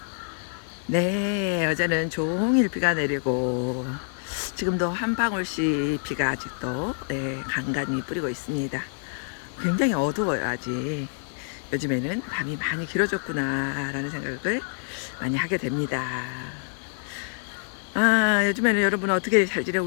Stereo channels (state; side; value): silent; right; 58 dB below the other